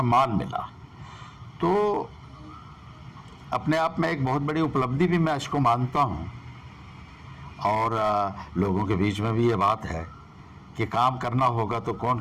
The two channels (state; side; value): identical; both; correlation 1.00